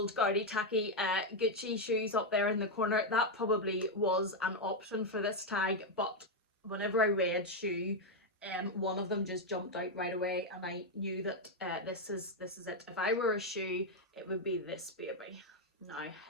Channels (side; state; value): both; normal; correlation 0.03